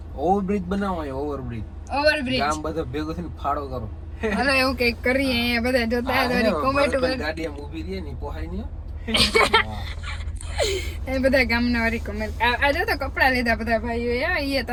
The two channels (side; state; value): both; identical; correlation 1.00